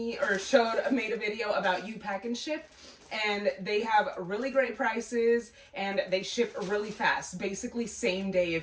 a video about U-Pack and Ship. And they have really great prices, and they ship really fast. Basically same day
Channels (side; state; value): both; identical; correlation 1.00